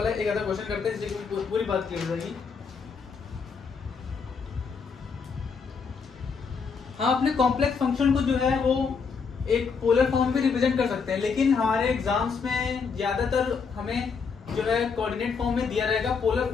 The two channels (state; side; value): quieter; right; 5.5 dB